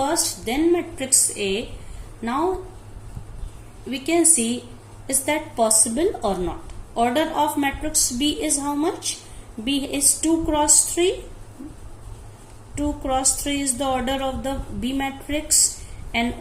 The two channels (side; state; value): both; identical; correlation 1.00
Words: then matrix A. Now we can see, is that possible or not? Order of matrix B is how much? B is 2 cross 3. 2 cross 3 is the order of the B matrix, and